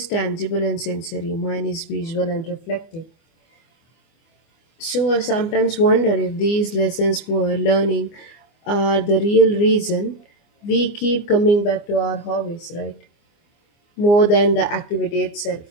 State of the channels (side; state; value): right; late; 24 ms